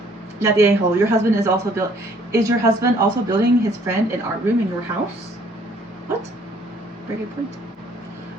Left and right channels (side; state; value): both; normal; correlation 0.61